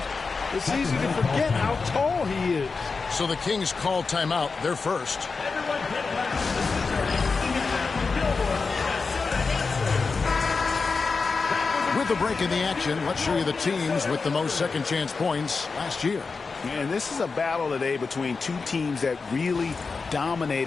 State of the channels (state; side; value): quieter; right; 4.5 dB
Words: it's easy to forget how tall he is. So the Kings call timeout. They're first. With the break in the action, let's show you the teams with the most second chance points last year. And this is a battle today between two teams that really